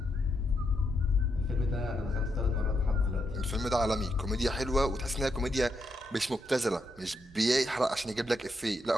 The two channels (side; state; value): both; normal; correlation 0.81